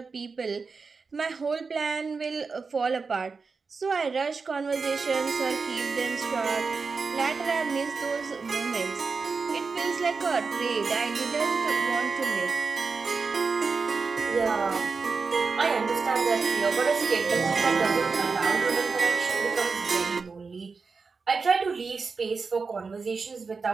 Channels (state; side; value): quieter; left; 4.7 dB